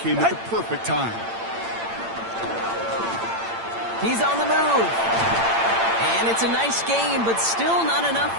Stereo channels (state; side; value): late; left; 8.8 ms